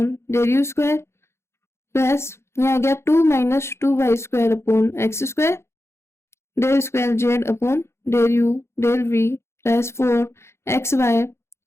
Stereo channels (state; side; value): late; right; 0.13 ms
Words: del u square plus यहाँ आ गया 2 minus 2y square upon x square del square z upon del u del v plus 4xy